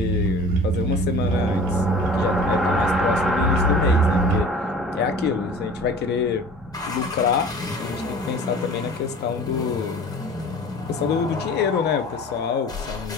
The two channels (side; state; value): both; normal; correlation 0.42